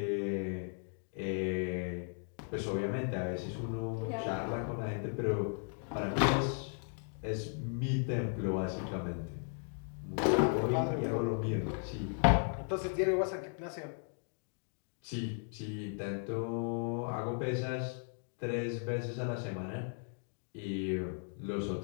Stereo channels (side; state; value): right; silent; 54 dB below the other